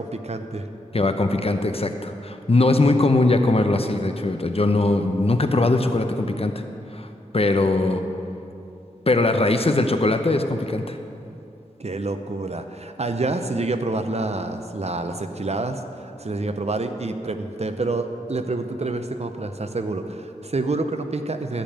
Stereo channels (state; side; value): normal; both; correlation 0.74